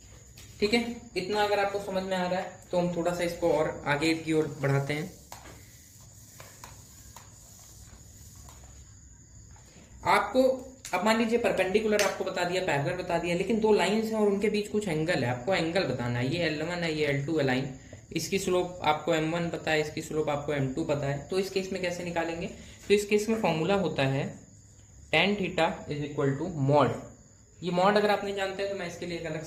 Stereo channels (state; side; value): identical; both; correlation 1.00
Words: ठीक है, इतना अगर आपको समझ में आ रहा है तो हम थोड़ा सा इसको और आगे की ओर बढ़ाते हैं। आपको अब मान लीजिए परपेंडिकुलर आपको बता दिया, पैरेलल बता दिया, लेकिन दो लाइंस हैं और उनके बीच कुछ एंगल है, आपको एंगल बताना है। ये L1 है, ये L2 है लाइन, इसकी स्लोप आपको M1 पता है, इसकी स्लोप आपको M2 पता है। तो इस केस में कैसे निकालेंगे? तो इस केस में फॉर्मूला होता है tan theta is equal to mod. ये मॉड अगर आप नहीं जानते हैं तो मैं इसके लिए एक अलग